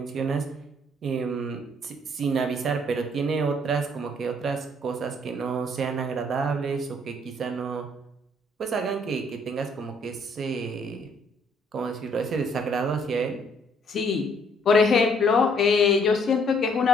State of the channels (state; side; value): normal; both; correlation 0.64